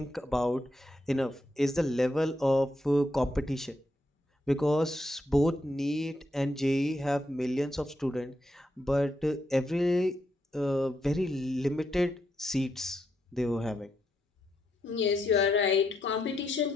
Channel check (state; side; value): normal; both; correlation 0.81